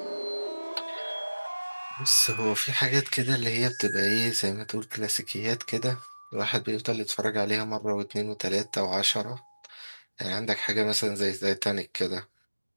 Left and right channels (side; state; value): both; inverted; correlation -1.00